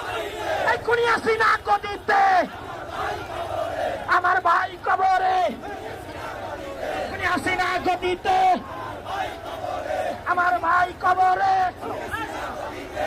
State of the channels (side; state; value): both; identical; correlation 1.00